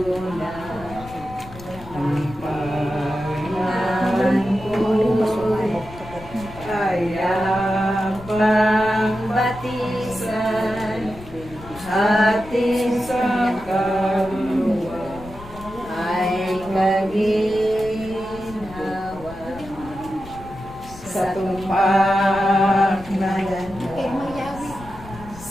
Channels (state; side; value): noise; left; rumble, 16 dB below the sound